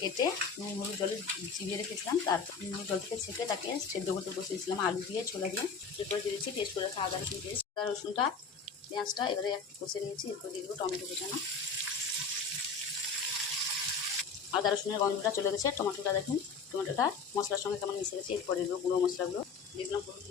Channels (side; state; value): right; quieter; 5.2 dB